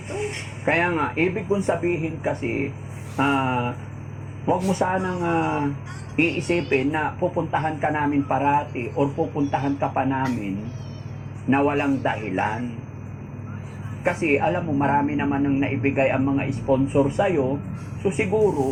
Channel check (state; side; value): identical; both; correlation 1.00